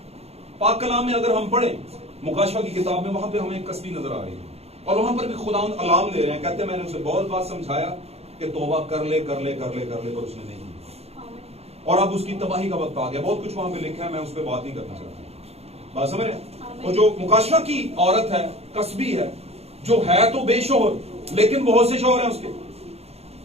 पाक कलाम में अगर हम पढ़े मुकाशवा की किताब में, वहां पे हमें एक कसबी नजर आ रही है और वहां पर भी खुदावंद अलार्म दे रहे हैं, कहते हैं मैंने उसे बहुत बार समझाया कि तौबा कर ले कर ले कर ले कर ले, पर उसने नहीं, और अब उसकी तबाही का वक्त आ गया। बहुत कुछ वहां पे लिखा है, मैं उस पर बात नहीं करना चाहता। बात समझ रहे? और जो मुकाशवा की औरत है, कसबी है, जो है तो बेशोहर, लेकिन बहुत से शोहर हैं उसके,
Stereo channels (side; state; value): left; late; 0.30 ms